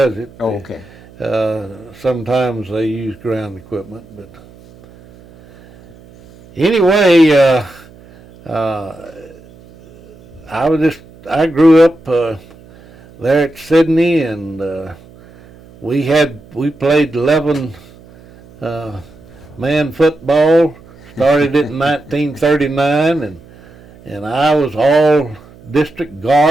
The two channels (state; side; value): noise; right; hum, 23 dB below the sound